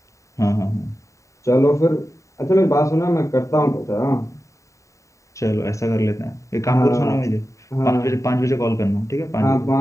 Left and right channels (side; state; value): right; late; 0.15 ms